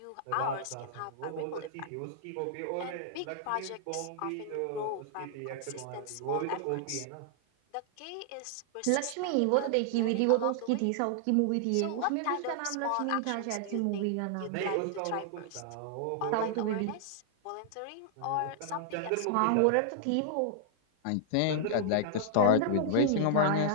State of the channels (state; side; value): different; both; correlation -0.01